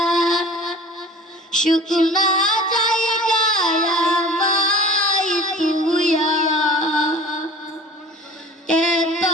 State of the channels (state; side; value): normal; both; correlation 0.42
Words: শুকনা যাইয়া বাই তুইয়া এত